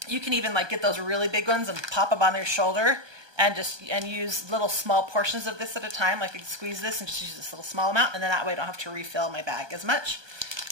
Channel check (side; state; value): left; late; 1.2 ms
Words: you can even like get those really big ones and pop them on your shoulder and use little small portions of this at a time. Like I can squeeze this and just use this little small amount, and then that way I don't have to refill my bag as much.